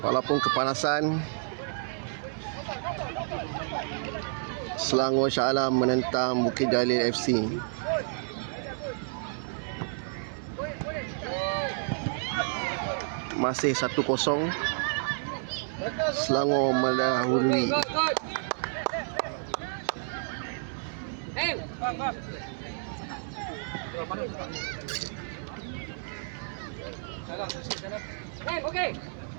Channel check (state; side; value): silent; left; 58 dB below the other